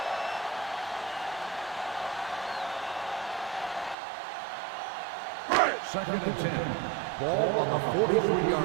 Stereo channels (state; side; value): drops out; left; at 4.0 s